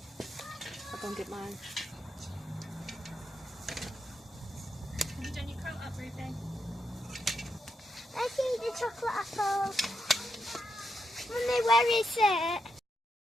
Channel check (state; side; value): normal; both; correlation 0.83